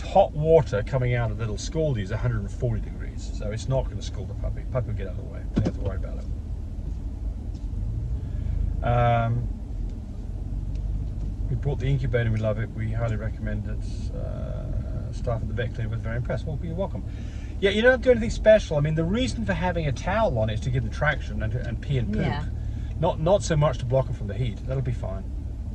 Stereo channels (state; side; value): identical; both; correlation 1.00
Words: hot water coming out of the little scaldy is 140 degrees. So it's not going to scald the puppy. Puppy will get out of the way. Don't have to worry about it. We bought the incubator, we love it. We highly recommend it. Staff at the vet clinic was very impressed. Well, you're welcome. Yeah, you don't do anything special. I mean, the reason for having a towel on it is to give them traction and pee and poop. Yeah. Not so much to block them from the heat. That'll be fine.